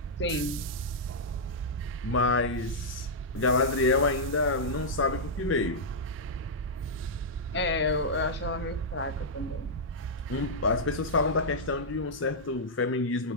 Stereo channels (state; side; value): normal; both; correlation -0.08